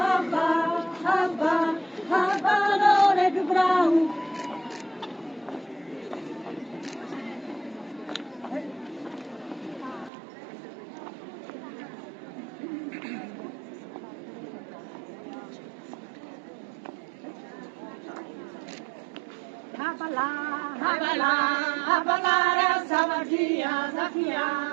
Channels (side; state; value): left; drops out; at 10.1 s